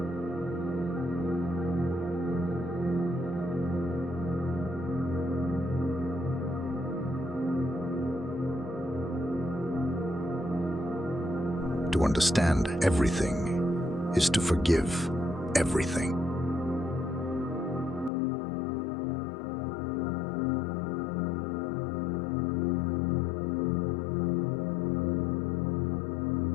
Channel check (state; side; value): drops out; right; at 18.1 s